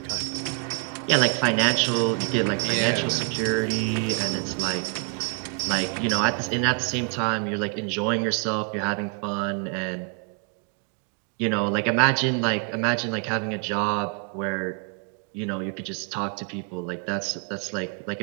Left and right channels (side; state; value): left; quieter; 38.9 dB